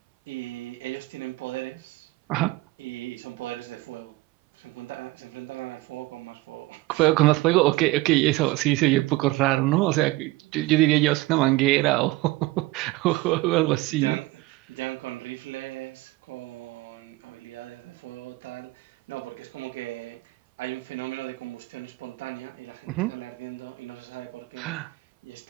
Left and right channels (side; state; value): left; quieter; 19.7 dB